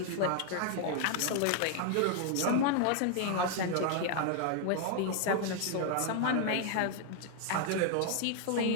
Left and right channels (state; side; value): different; both; correlation 0.00